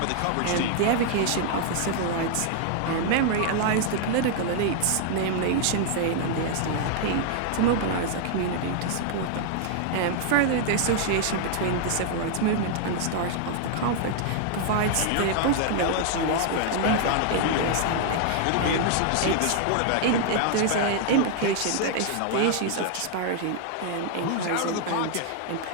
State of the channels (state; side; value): different; both; correlation 0.00